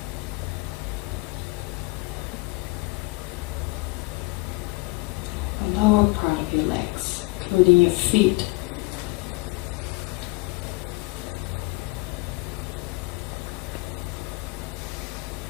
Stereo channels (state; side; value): quieter; right; 24.2 dB